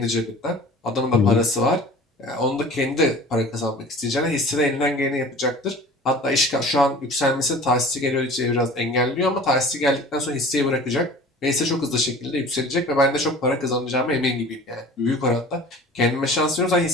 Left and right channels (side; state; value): both; normal; correlation 0.43